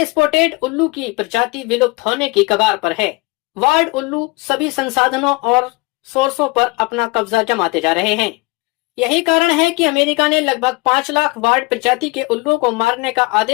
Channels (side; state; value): right; quieter; 25.2 dB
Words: स्पॉटेड उल्लू की प्रजाति विलुप्त होने की कगार पर है। वार्ड उल्लू सभी संसाधनों और सोर्सों पर अपना कब्जा जमाते जा रहे हैं। यही कारण है कि अमेरिका ने लगभग 5 लाख वार्ड प्रजाति के उल्लुओं को मारने का